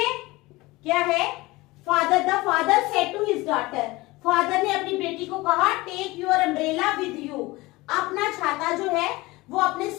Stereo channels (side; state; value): right; quieter; 21.0 dB